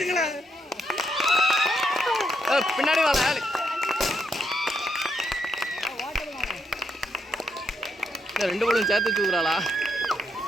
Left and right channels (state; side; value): normal; both; correlation 0.77